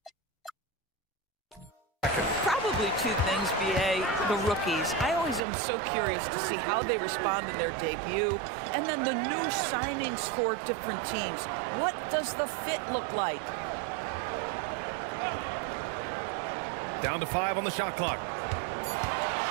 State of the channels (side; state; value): left; drops out; at 5.4 s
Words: Probably two things, BA. The rookies. I always am so curious to see how they respond in their debut. And then the new signings for different teams. What does the fit look like? Down to 5 on the shot clock.